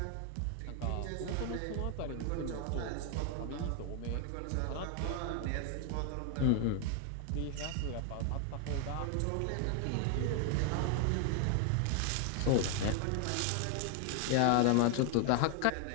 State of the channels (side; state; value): both; different; correlation 0.00